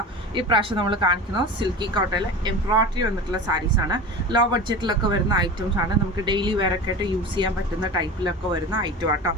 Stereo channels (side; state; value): both; normal; correlation 0.32